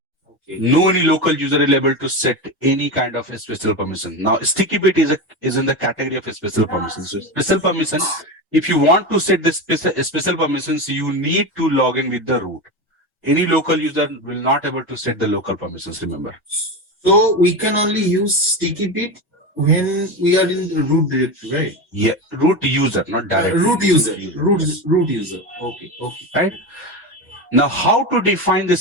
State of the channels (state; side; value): normal; both; correlation 0.20